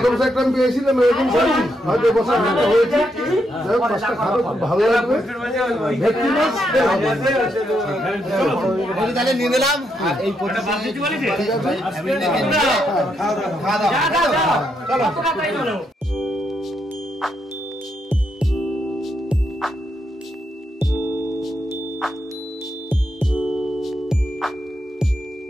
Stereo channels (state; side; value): normal; both; correlation 0.79